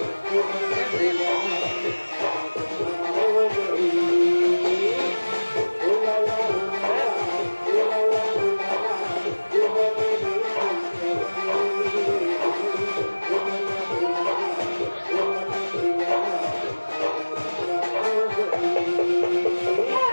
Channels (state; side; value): inverted; both; correlation -1.00